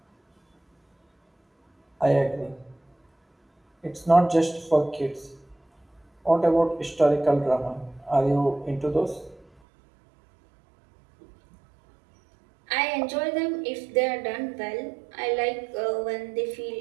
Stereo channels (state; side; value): drops out; left; at 9.5 s